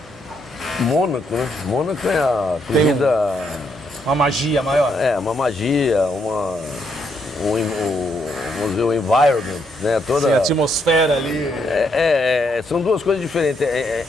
Mônaco, né? Mônaco é a corrida... Uma magia maior. É, uma magia, vamos dizer, o environment, né? Toda... Sim, a atmosfera ali. São duas coisas diferentes.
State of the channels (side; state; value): both; normal; correlation 0.75